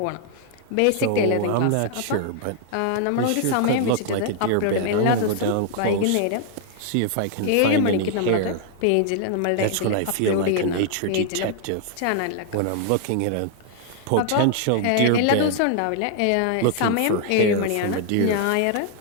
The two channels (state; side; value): different; both; correlation 0.00